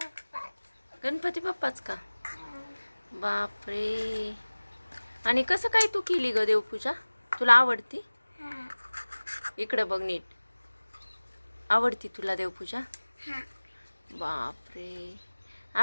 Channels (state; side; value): inverted; both; correlation -1.00